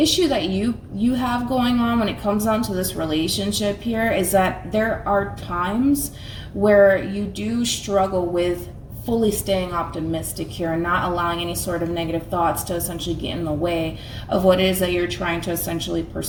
that you have going on when it comes down to this relationship here is that there are times where you do struggle with fully staying optimistic here and not allowing any sort of negative thoughts to essentially get in the way of what it is that you're trying to essentially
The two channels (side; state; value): both; identical; correlation 1.00